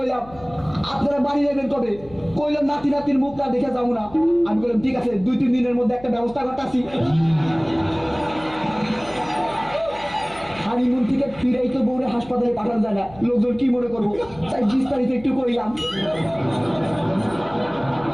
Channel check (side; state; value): left; noise; hum, 21 dB below the sound